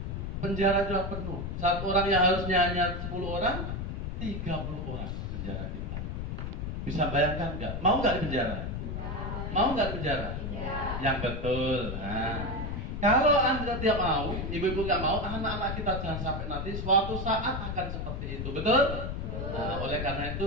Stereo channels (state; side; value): noise; left; rumble, 4 dB below the sound